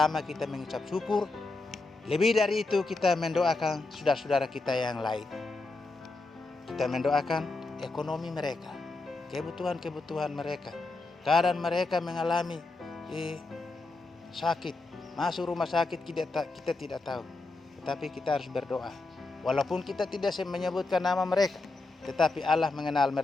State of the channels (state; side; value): quieter; right; 3.4 dB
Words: kita mengucap syukur. Lebih dari itu kita mendoakan saudara-saudara kita yang lain. Kita mendoakan ekonomi mereka, kebutuhan-kebutuhan mereka. Kadang mereka mengalami sakit, masuk rumah sakit, kita tidak tahu. Tetapi kita harus berdoa. Walaupun kita tidak menyebutkan nama mereka, tetapi Allah mengenal